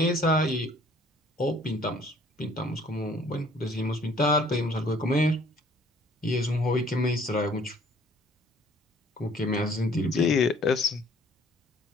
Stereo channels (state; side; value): normal; both; correlation 0.57